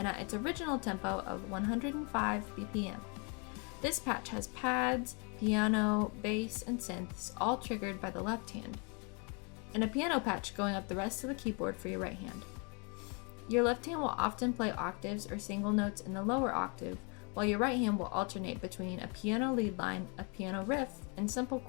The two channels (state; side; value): quieter; right; 34.4 dB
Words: at its original tempo of 105 BPM. This patch has pads, piano, bass, and synths all triggered by the left hand, and a piano patch going up the rest of the keyboard for your right hand. Your left hand will often play octaves or single notes in the lower octave, while your right hand will alternate between a piano lead line, a piano riff, and simple